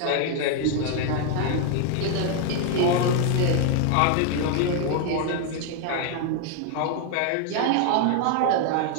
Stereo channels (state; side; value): different; both; correlation 0.00